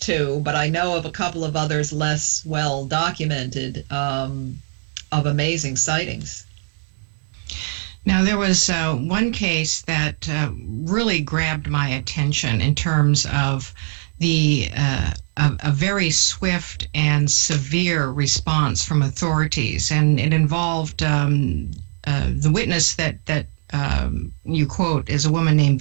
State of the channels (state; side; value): silent; left; 65 dB below the other